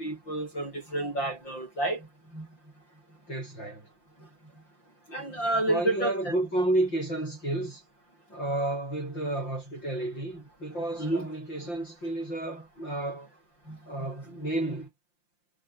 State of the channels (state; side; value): late; right; 5.7 ms